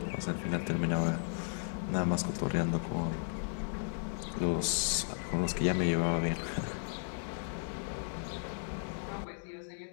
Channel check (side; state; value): right; silent; digital silence